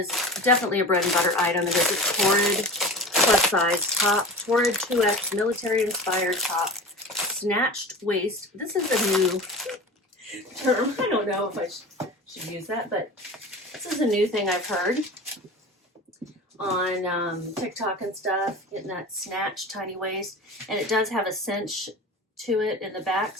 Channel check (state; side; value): normal; both; correlation 0.33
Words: definitely a bread and butter item. It is a Torrid plus size top, Torrid 2X military-inspired top. Snatched waist. This is a new term. I don't know if I should use that, but this is a new thing I've heard on TikTok and stuff, getting that snatched tiny waist. And it does have a cinch to it in the back,